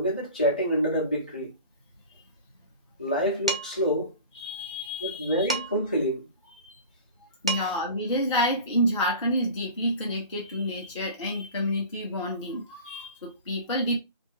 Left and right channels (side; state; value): both; inverted; correlation -0.37